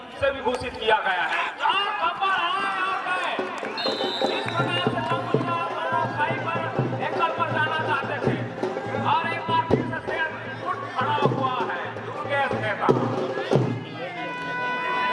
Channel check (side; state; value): both; identical; correlation 1.00